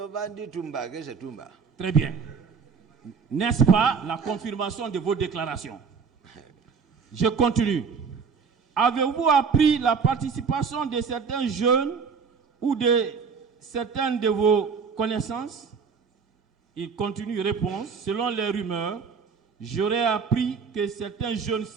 vendu Toumba. Qu'est-ce que c'est Toumba? Très bien. N'est-ce pas la confirmation de vos déclarations? Je continue. Avez-vous appris la participation de certains jeunes ou de certaines de vos connaissances? Il continue, réponse. Selon les rumeurs, j'aurais appris que certains jeunes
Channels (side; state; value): left; quieter; 5.7 dB